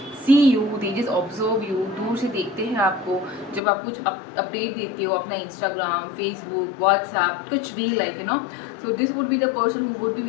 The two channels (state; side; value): drops out; right; at 3.6 s